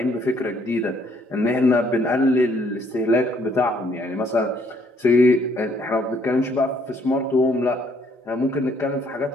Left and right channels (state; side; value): normal; both; correlation 0.66